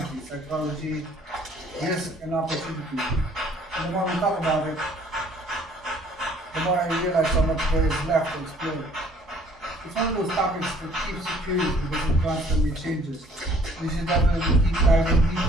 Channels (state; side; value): normal; both; correlation 0.58